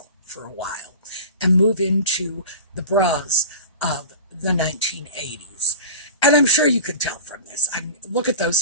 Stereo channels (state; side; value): inverted; both; correlation -0.33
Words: for a while and move into the bras of the 1980s. And I'm sure you can tell from this. Look at those